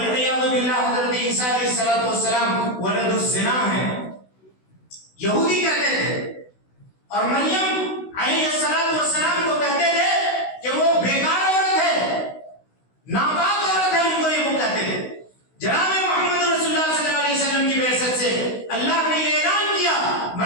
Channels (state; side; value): late; right; 16 ms